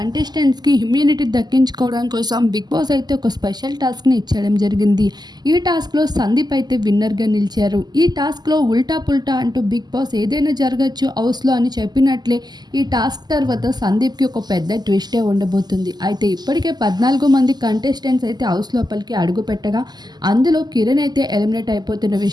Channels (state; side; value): late; left; 0.20 ms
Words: ఇమ్యూనిటీ దక్కించుకోవడం కోసం బిగ్ బాస్ అయితే ఒక స్పెషల్ టాస్క్ని ఇచ్చడం జరిగింది. ఈ టాస్క్లో సందీప్ అయితే విన్నర్గా నిలిచారు. ఈ టాస్క్లో ఉల్టా పుల్టా అంటూ బిగ్ బాస్ ఏదైనా జరగచ్చు హౌస్లో అని చెప్పినట్లే ఈ టాస్క్ తర్వాత సందీప్కి ఒక పెద్ద ట్విస్టే ఉండబోతుంది. అయితే ఇప్పటికే 14 మంది కంటెస్టెంట్స్ అయితే హౌస్ లోపలికి అడుగు పెట్టగా అందులో కిరణ్ అయితే ఎలిమినేట్ అయిపోతున్న